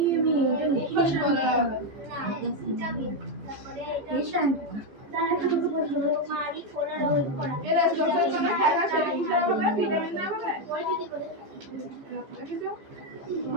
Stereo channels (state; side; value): late; left; 15 ms